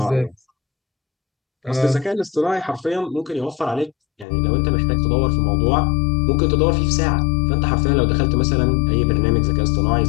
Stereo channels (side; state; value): right; drops out; at 4.2 s